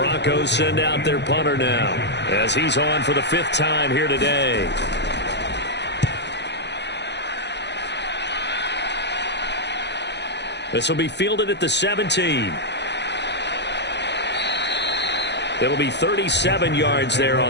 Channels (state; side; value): late; right; 0.50 ms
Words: send out their punter now as he's on for the 5th time here today. This will be fielded at the 17. It'll be 37 yards there